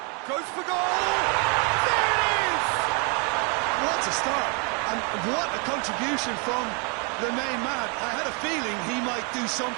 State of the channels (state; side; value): quieter; left; 34.9 dB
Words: Goes for goal! There it is! What a start! And what a contribution from the main man. I had a feeling he might do